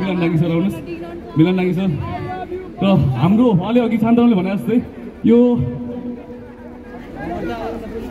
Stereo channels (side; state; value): both; identical; correlation 1.00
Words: डाङ्गी सर आउनुहोस् मिलन डाङ्गी सर र हाम्रो अलि अघि शान्तरामले भने जस्तै यो